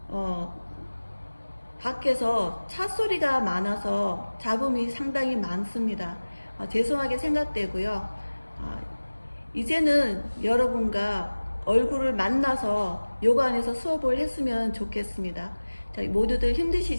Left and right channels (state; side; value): inverted; both; correlation -1.00